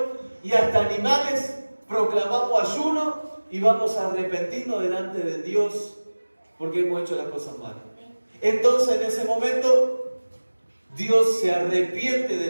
y hasta animales, proclamamos ayuno y vamos a arrepentirnos delante de Dios porque hemos hecho las cosas mal. Entonces en ese momento Dios se arrepiente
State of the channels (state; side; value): inverted; both; correlation -1.00